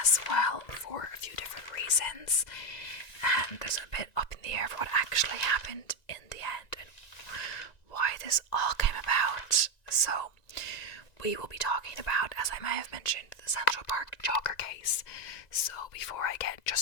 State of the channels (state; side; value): late; right; 1.9 ms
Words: well for a few different reasons. And there's a bit up in the air for what actually happened in the end and why this all came about. So we will be talking about, as I may have mentioned, the Central Park Jogger case. So before I get